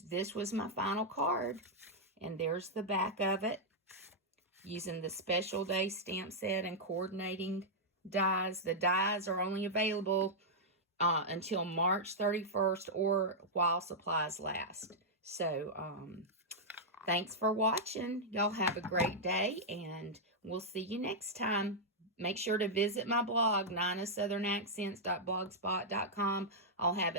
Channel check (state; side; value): normal; both; correlation -0.07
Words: this was my final card. And there's the back of it. Using the Special Day stamp set and coordinating dies. The dies are only available until March 31st or while supplies last. So, thanks for watching. Y'all have a great day, and we'll see you next time. Make sure to visit my blog, ninasouthern.blogspot.com. I'll have